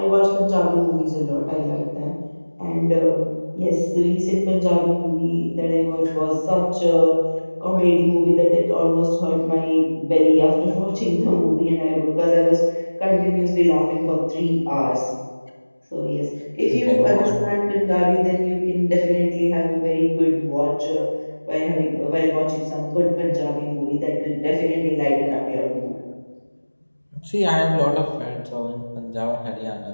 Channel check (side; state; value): both; inverted; correlation -1.00